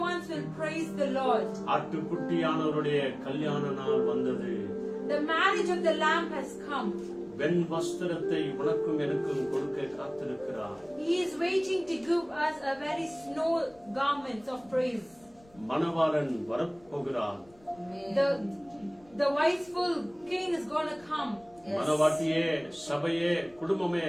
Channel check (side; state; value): left; noise; rumble, 29 dB below the sound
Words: ones will praise the Lord. ஆட்டுக்குட்டியானவருடைய கல்யாண நாள் வந்தது. The marriage of the Lamb has come. வெண் வஸ்திரத்தை உனக்கும் எனக்கும் கொடுக்க காத்திருக்கிறார். He is waiting to give us a very snow garments of praise. மணவாளன் வரப்போகிறார். The wiseful king is going to come. மணவாட்டியே, சபையே, குடும்பமே